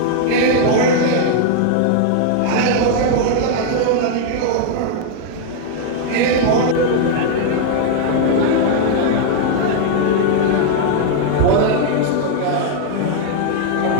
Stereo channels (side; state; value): both; different; correlation 0.00